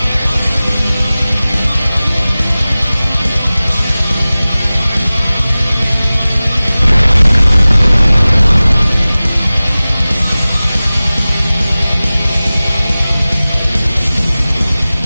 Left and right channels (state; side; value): inverted; both; correlation -0.98